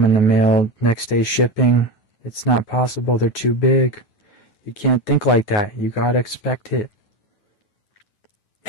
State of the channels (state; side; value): late; right; 9.3 ms